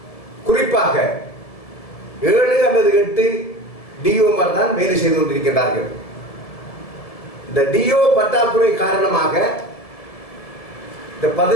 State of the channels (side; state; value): right; late; 1.7 ms